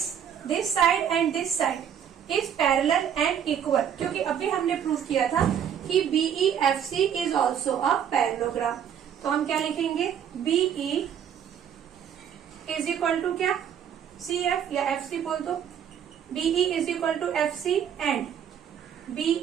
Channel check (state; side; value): quieter; left; 8.8 dB